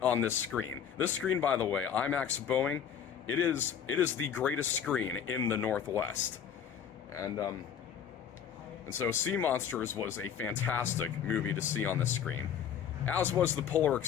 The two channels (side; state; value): right; quieter; 8.3 dB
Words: on this screen. This screen, by the way, IMAX Boeing, it is the greatest screen in the Northwest. And so Sea Monsters was a fantastic movie to see on the screen. As was the Polar